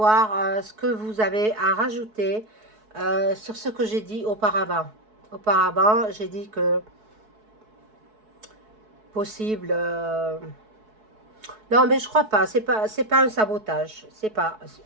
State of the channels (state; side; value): late; left; 4.6 ms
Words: ce que vous avez à rajouter sur ce que j'ai dit auparavant. Auparavant, j'ai dit que possible... Non, mais je crois pas. C'est pas un sabotage. C'est pas...